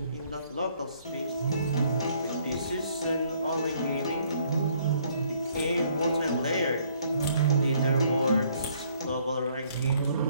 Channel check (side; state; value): both; inverted; correlation -0.65